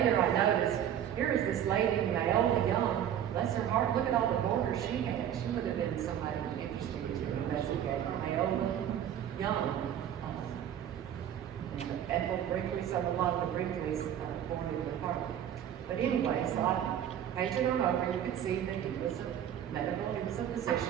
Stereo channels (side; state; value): left; quieter; 10.1 dB